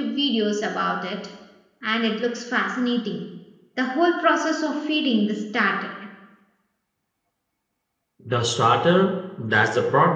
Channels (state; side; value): identical; both; correlation 1.00